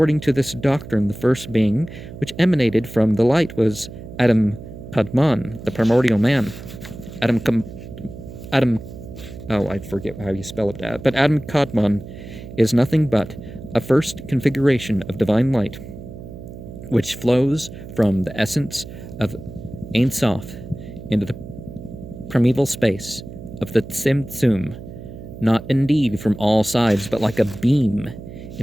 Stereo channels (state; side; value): noise; right; hum, 13 dB below the sound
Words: to this doctrine, the first being which emanated from the light was Adam Kadmon, the primordial man. I forget how you spell it, but Adam Kadmon is nothing but a first configuration of divine light, which flows from the essence of Ein Sof into the primeval space of the Tzimtzum, not indeed from all sides, but like a beam